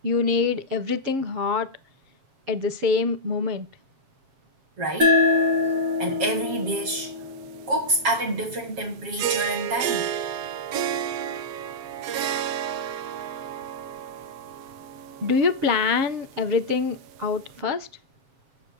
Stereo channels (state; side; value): late; left; 7.4 ms